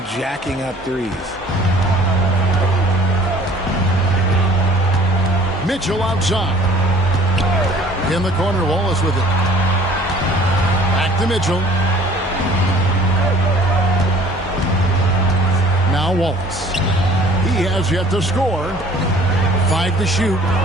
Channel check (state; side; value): normal; both; correlation 0.52